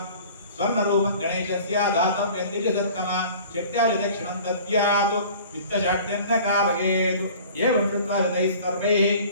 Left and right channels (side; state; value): both; inverted; correlation -0.46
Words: స్వర్ణరూపం గణేశస్య దాతవ్యం దిశసత్తమ చట్యాలి దక్షిణం దద్యాత్ విత్తశాట్యన్న కారయేత్ ఏవం చత్వారతైస్తర్వైః